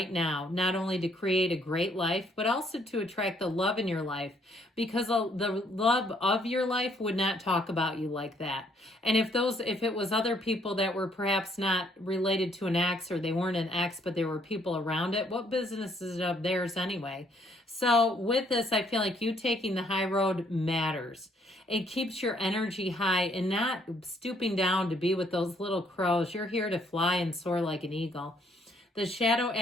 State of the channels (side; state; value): both; normal; correlation 0.67